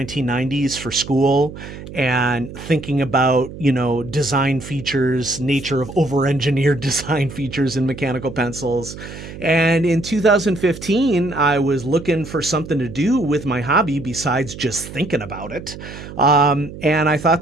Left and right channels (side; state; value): right; noise; hum, 13 dB below the sound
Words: for school, and thinking about, design features, nature of over-engineered design features in mechanical pencils. And in 2015, I was looking for something to do with my hobby besides just thinking about it. And I thought